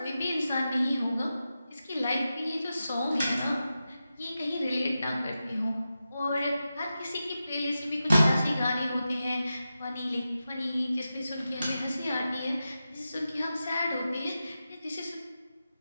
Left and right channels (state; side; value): inverted; both; correlation -0.91